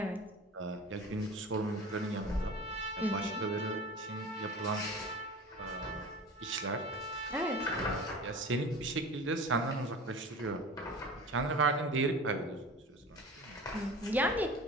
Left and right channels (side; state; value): both; normal; correlation 0.37